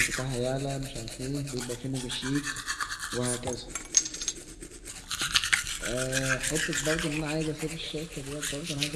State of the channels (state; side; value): identical; both; correlation 1.00